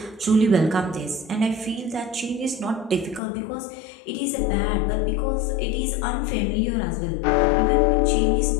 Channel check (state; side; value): drops out; right; at 3.2 s